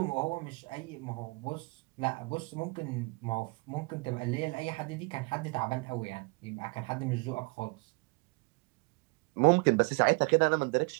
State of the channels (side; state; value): left; quieter; 28.8 dB